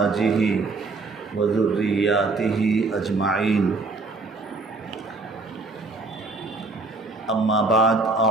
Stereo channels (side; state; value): left; quieter; 3.6 dB